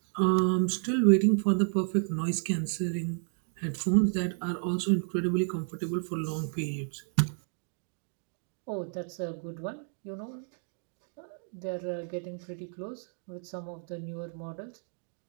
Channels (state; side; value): silent; left; 57 dB below the other